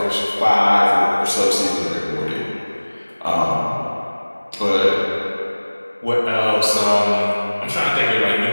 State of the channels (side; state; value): both; inverted; correlation -1.00